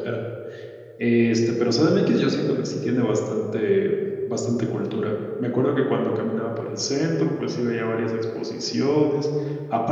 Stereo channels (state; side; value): identical; both; correlation 1.00